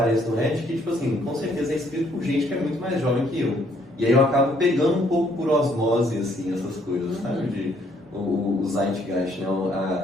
no Reddit que, tipo assim, com certeza é escrito por gente que é muito mais jovem que eu. E aí eu acabo pegando um pouco por osmose, assim, essas coisas, sabe? O Zeitgeist, né?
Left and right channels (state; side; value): normal; both; correlation 0.67